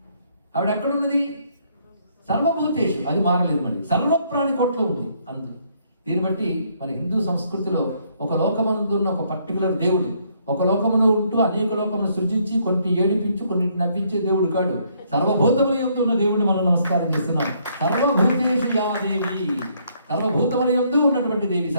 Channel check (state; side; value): inverted; both; correlation -0.68